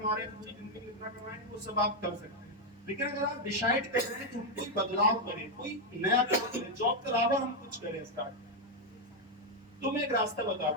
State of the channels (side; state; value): both; normal; correlation 0.02